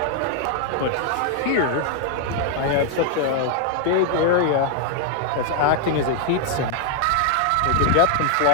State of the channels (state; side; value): different; both; correlation 0.00